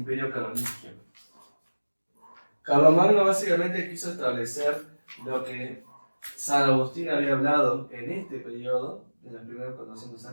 carolingio. Carlomagno básicamente quiso establecer lo que San Agustín había hablado en este periodo, en los primeros 400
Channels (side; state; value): both; inverted; correlation -1.00